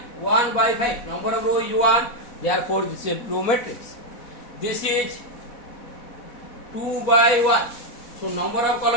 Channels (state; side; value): late; right; 4.1 ms